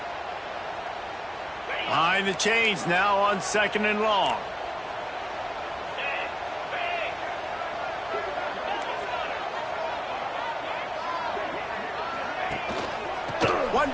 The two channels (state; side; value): identical; both; correlation 1.00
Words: Behind the chains now on 2nd and long. One